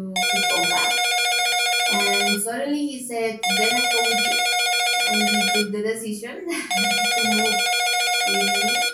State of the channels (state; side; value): identical; both; correlation 1.00